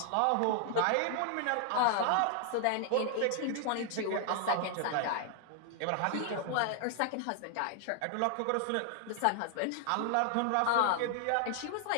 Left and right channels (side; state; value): both; different; correlation 0.00